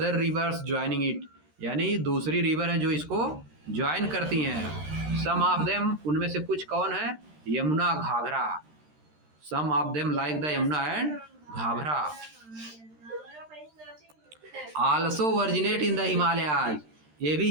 rivers joining it, यानी दूसरी रिवर है जो इसको ज्वाइन करती हैं। सम ऑफ देम, उनमें से कुछ कौन है? Yamuna, Ghaghara. Some of them like the Yamuna and Ghaghara. Also originate in the Himalayas, ये भी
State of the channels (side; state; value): left; late; 13 ms